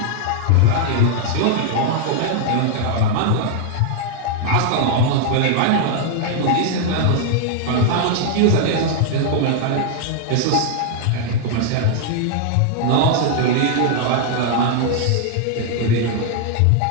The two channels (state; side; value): different; both; correlation 0.00